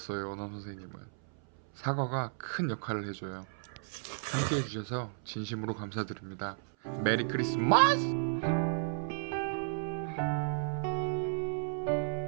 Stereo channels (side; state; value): left; silent; 55 dB below the other